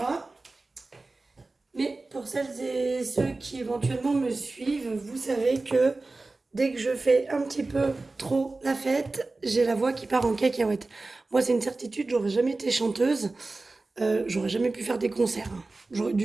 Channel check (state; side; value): quieter; left; 3.4 dB